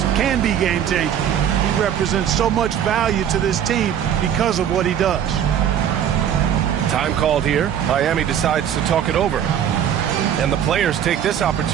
can be game-changing. He represents so much value to this team because of what he does. Time called here. Miami decides to talk it over. And the players take this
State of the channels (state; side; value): quieter; left; 9.4 dB